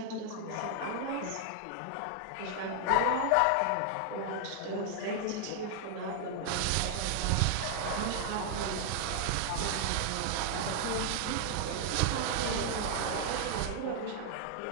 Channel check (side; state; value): both; different; correlation 0.00